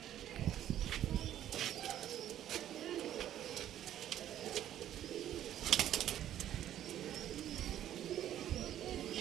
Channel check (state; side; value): quieter; left; 11.6 dB